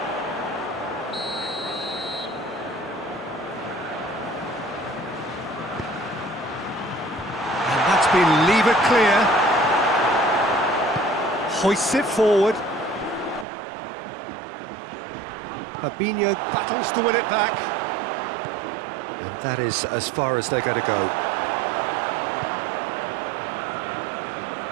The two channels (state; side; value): drops out; left; at 13.5 s